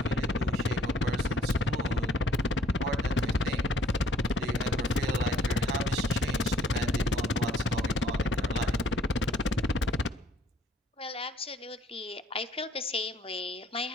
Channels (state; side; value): normal; both; correlation 0.62